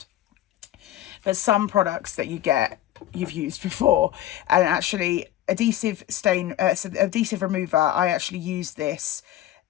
But some products that you get, you've used before. And actually, adhesive remover, I actually use this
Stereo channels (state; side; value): quieter; right; 13.2 dB